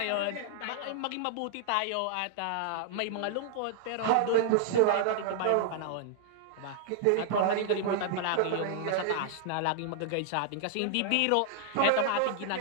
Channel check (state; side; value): different; both; correlation -0.01